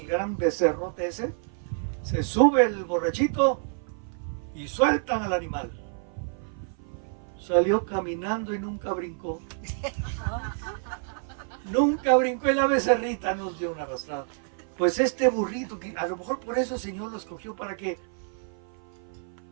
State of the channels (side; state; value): left; silent; 55 dB below the other